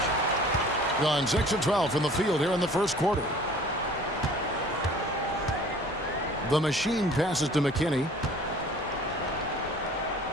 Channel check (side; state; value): both; normal; correlation 0.49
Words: Gone 6 of 12 from the field here in the first quarter. The machine passes to McKinney.